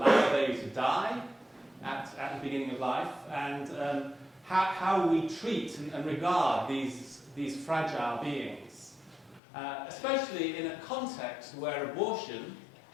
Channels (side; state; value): right; drops out; at 9.4 s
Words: a baby to die at the beginning of life, and how we treat and regard these fragile beings, especially in a context where abortion,